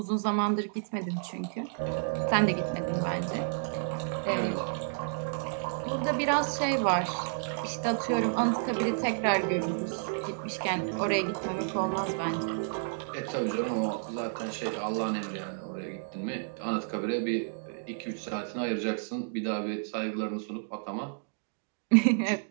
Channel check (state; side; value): silent; left; digital silence